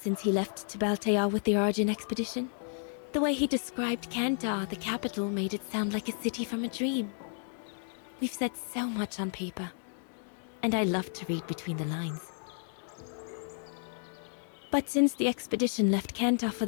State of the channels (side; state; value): right; silent; 56 dB below the other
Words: he left to Baltea with the Origin expedition. The way he described Kantar, the capital, made it sound like a city from a dream. We've said so much on paper. And I love to read between the lines. But since the expedition left Kantar for